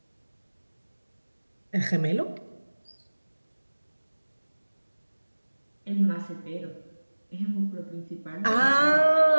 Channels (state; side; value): inverted; both; correlation -1.00